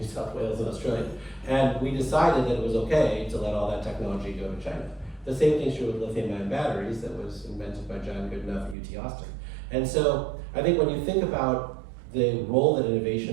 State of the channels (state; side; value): drops out; left; at 8.8 s